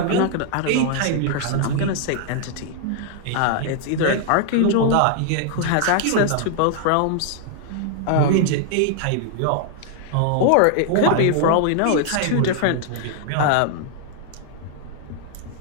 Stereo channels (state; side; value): different; both; correlation 0.00